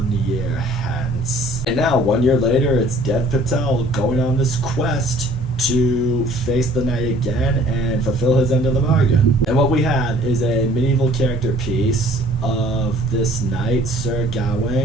year hence. And now, 1 year later, it's Dev Patel going on this quest to face the knight again and fulfill his end of the bargain. And what we have is a medieval character piece of this knight, Sir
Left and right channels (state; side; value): normal; both; correlation 0.54